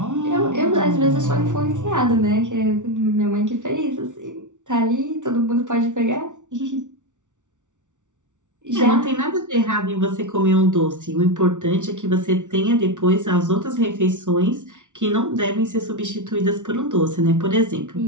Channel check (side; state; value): left; late; 0.86 ms